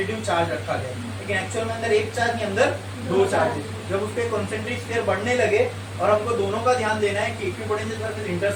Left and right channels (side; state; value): both; identical; correlation 1.00